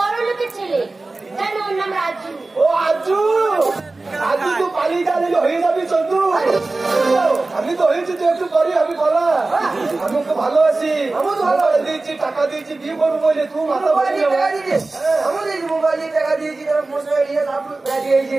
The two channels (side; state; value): left; quieter; 3.3 dB